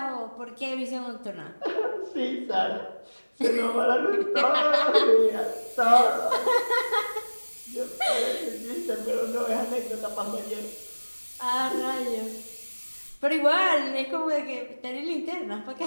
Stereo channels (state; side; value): inverted; both; correlation -1.00